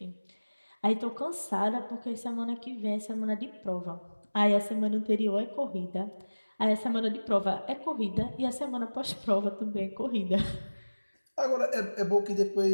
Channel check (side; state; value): both; inverted; correlation -1.00